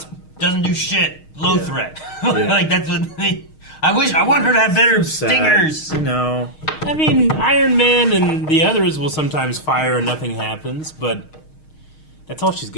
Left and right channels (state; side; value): late; right; 6.4 ms